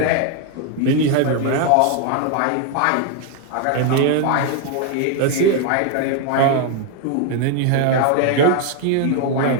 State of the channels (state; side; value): different; both; correlation 0.01